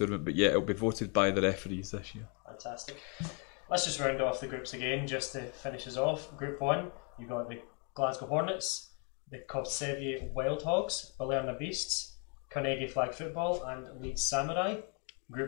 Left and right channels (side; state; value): right; quieter; 36.7 dB